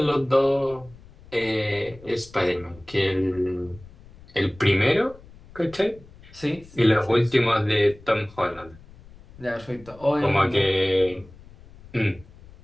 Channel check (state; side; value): noise; left; rumble, 22 dB below the sound